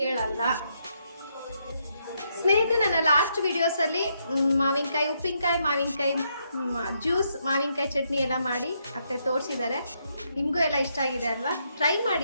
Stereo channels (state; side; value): inverted; both; correlation -0.77